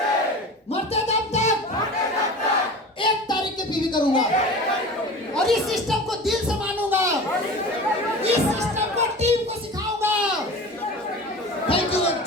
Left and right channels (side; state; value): both; normal; correlation 0.36